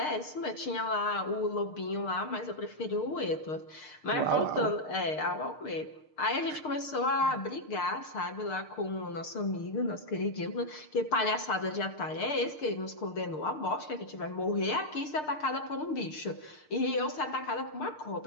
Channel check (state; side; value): late; right; 6.6 ms